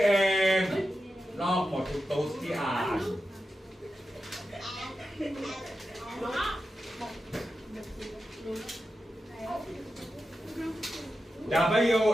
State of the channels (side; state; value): both; normal; correlation 0.91